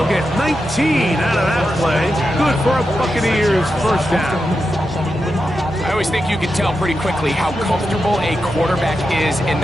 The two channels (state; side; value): normal; both; correlation 0.88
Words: get 19 out of that play. Good for a Buccaneers first down. I always think you can tell pretty quickly how comfortable a quarterback is in